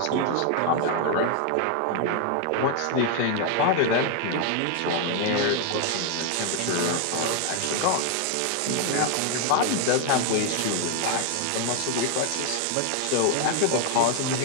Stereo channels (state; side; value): different; both; correlation 0.01